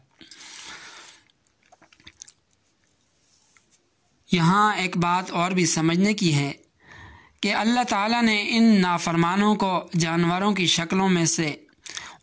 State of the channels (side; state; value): both; identical; correlation 1.00